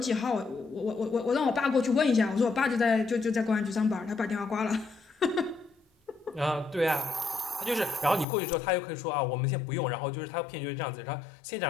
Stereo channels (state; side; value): drops out; right; at 8.2 s